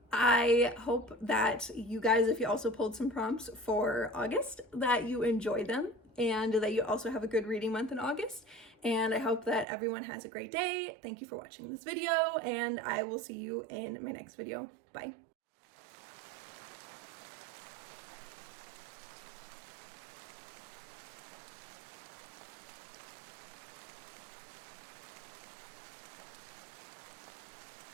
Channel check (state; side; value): drops out; left; at 9.7 s